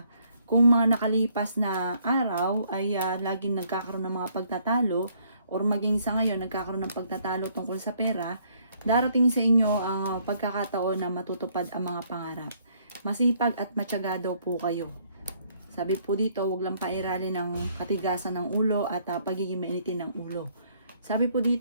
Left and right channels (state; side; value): inverted; both; correlation -0.66